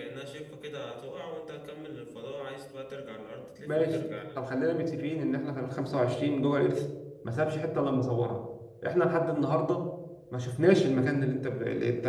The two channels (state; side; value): identical; both; correlation 1.00